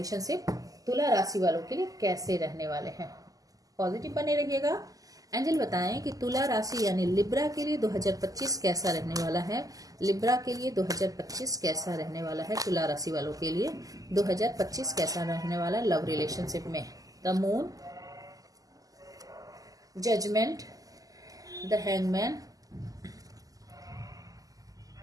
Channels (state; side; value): late; left; 0.17 ms